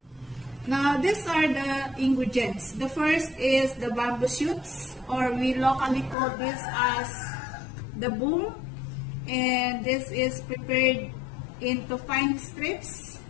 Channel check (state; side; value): drops out; right; at 6.2 s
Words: Now, these are the ingredients. The first is the bamboo shoots, or we locally call this as the boom. And this is prepared into fine strips.